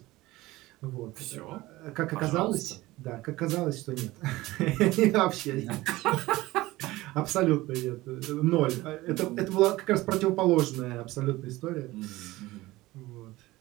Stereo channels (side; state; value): left; quieter; 18.7 dB